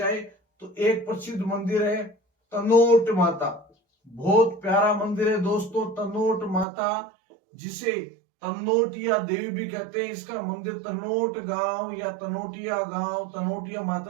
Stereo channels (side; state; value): left; drops out; at 6.7 s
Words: तो एक प्रसिद्ध मंदिर है तनोट माता। बहुत प्यारा मंदिर है दोस्तों तनोट माता, जिसे तनोटिया देवी भी कहते हैं। इसका मंदिर तनोट गांव या तनोटिया गांव, तनोटिया